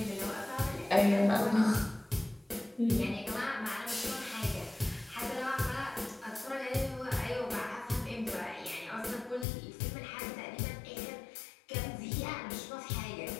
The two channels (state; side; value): drops out; right; at 9.5 s